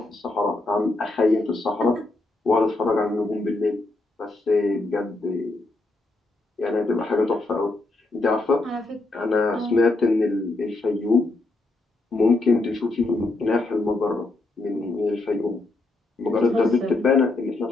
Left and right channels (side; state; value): right; quieter; 3.0 dB